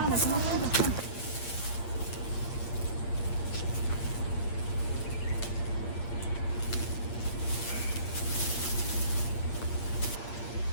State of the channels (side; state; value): right; late; 8.6 ms